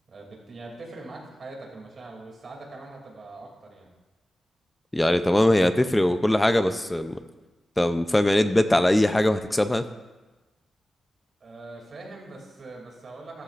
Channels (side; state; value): both; normal; correlation 0.98